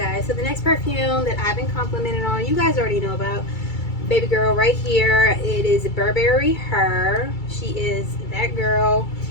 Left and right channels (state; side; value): late; right; 2.3 ms